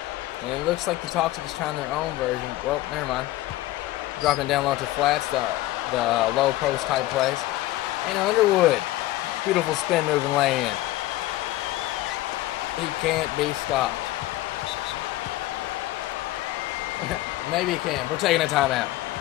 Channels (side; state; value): right; quieter; 16.5 dB